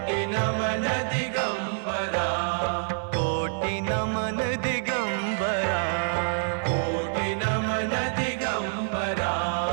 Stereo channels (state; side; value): silent; left; 57 dB below the other